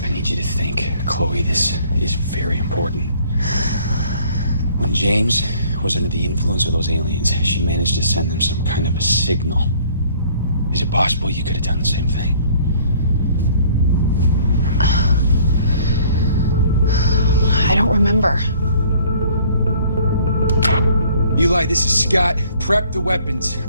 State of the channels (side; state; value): both; inverted; correlation -0.57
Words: I need you to think, Chloe, this is very important. When James was under the influence of those aliens, she managed to send them some kind of a signal. Is it possible you could have done the same thing? I don't remember. Eli, this is Scott. Prep the weapons.